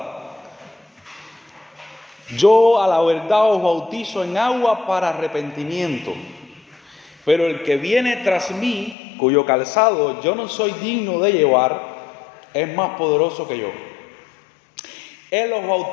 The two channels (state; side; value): drops out; right; at 9.0 s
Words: Yo a la verdad os bautizo en agua para arrepentimiento, pero el que viene tras mí, cuyo calzado yo no soy digno de llevar, es más poderoso que yo. Él os